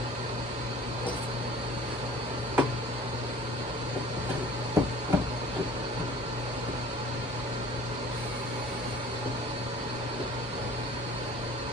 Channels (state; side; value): normal; both; correlation 0.47